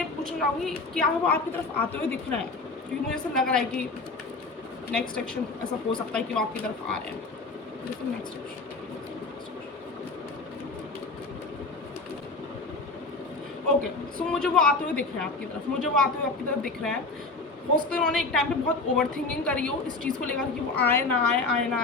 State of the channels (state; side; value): quieter; right; 3.6 dB